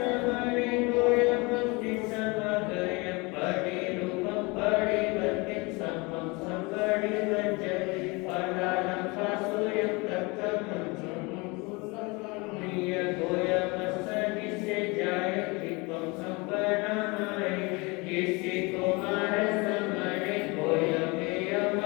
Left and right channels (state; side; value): quieter; right; 26.7 dB